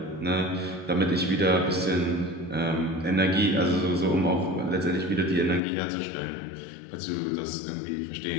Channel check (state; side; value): drops out; right; at 5.6 s